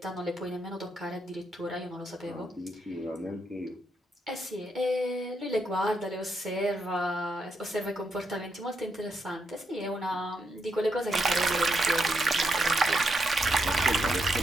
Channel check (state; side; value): normal; both; correlation 0.80